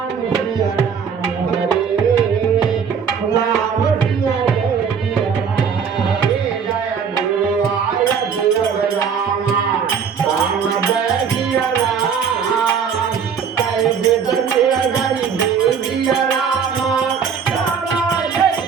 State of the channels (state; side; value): quieter; left; 6.7 dB